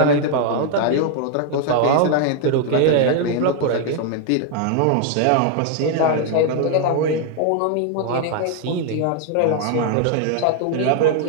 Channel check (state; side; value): different; both; correlation 0.00